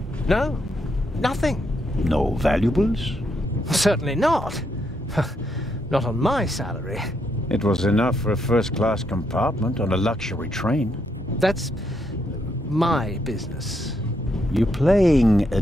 No, nothing. No valuables? Certainly not. Not on my salary. It was enough for a first-class compartment on a luxury train. That's my business. You're playing a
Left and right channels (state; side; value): normal; both; correlation 0.77